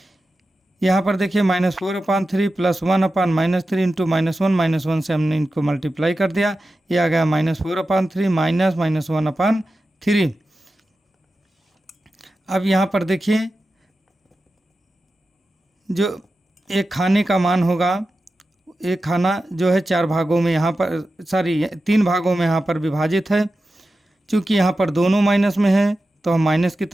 यहाँ पर देखिए -4/3 प्लस 1/-3 इंटू -1 से हमने इनको मल्टीप्लाई कर दिया, ये आ गया -4/3 माइनस -1/3। अब यहाँ पर देखिए जो एक खाने का मान होगा, एक खाना जो है 4 भागों में यहाँ पर 3 भागों में यहाँ पर विभाजित है। चूँकि यहाँ पर दोनों माइनस में है तो हम माइनस की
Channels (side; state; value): both; normal; correlation 0.92